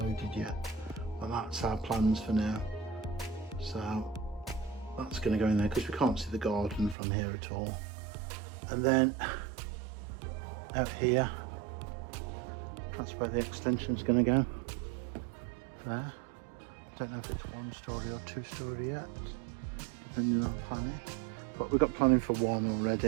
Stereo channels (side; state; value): left; drops out; at 7.0 s